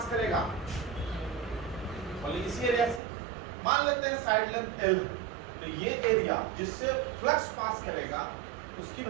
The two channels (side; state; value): left; drops out; at 3.0 s